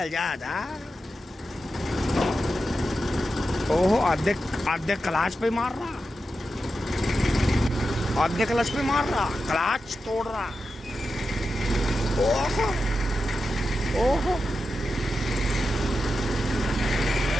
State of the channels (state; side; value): normal; both; correlation 0.90